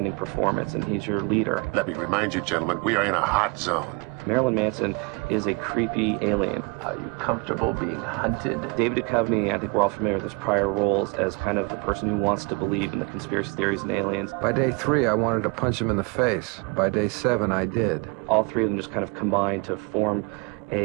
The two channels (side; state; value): left; quieter; 29.9 dB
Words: performance, and he's your leader. Let me remind you, gentlemen, we are in a hot zone. Marilyn Manson is a creepy alien. Are you comfortable being hunted? David Duchovny, I think we're all familiar with his prior roles as kind of the person who wants to believe in the conspiracy theories and aliens. By day 3, I wanted to punch him in the face. By day 7, I did. All three of them just kind of combine to form